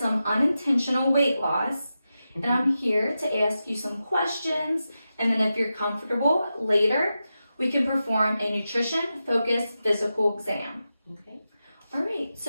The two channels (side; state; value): both; inverted; correlation -0.91